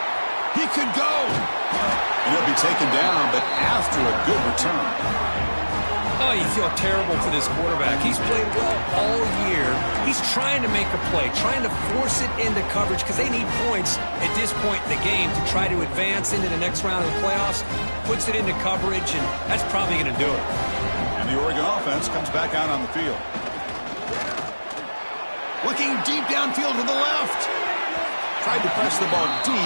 He could go. And he'll be taken down, but after a good return. Oh, you feel terrible for this quarterback. He's played well all year. He's trying to make a play, trying to force it into coverage because they need points at this point in the game to try to advance into the next round of the playoffs. Puts it into coverage, and that's probably going to do it. And the Oregon offense comes back out on the field. Looking deep downfield to the left. Tried to press the ball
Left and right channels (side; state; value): both; inverted; correlation -1.00